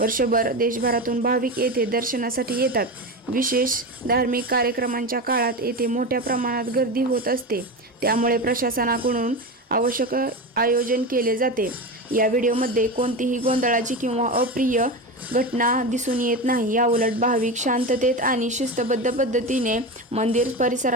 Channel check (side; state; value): both; normal; correlation 0.22